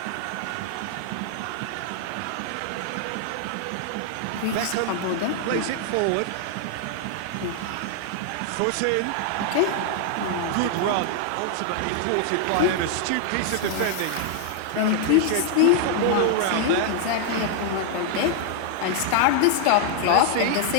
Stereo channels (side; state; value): both; different; correlation 0.00